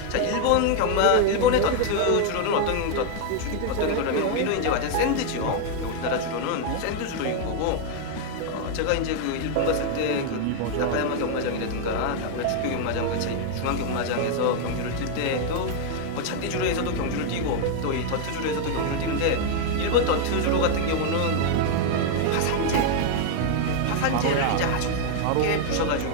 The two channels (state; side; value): different; both; correlation 0.00